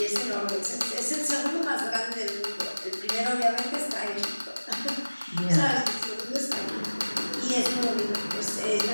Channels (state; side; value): inverted; both; correlation -1.00